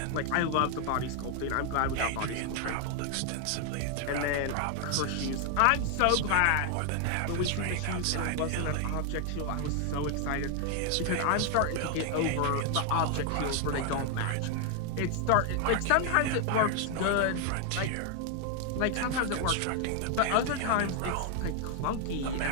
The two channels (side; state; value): both; different; correlation 0.00